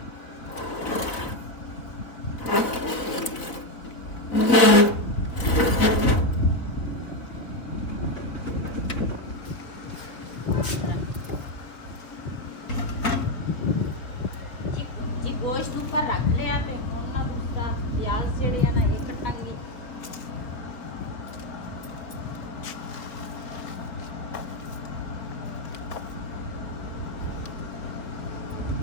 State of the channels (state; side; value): late; right; 3.8 ms